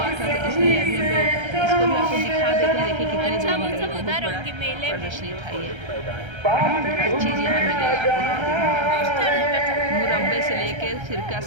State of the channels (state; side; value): late; left; 1.3 ms